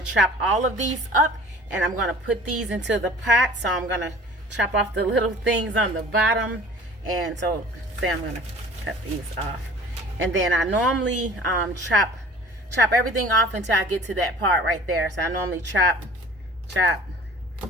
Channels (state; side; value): normal; both; correlation 0.46